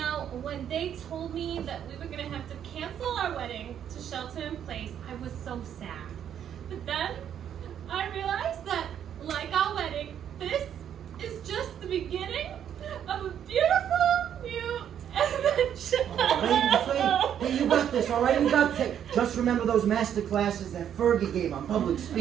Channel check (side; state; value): left; quieter; 9.4 dB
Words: when they told me that we were going to have to cancel our wedding to shelter in place, I was so sad. But then I realized that, like our wedding, this is just the beginning of a beautiful new adventure. Hey, you got this, all right? You got this. Just remember those master classes that Fergie gave on public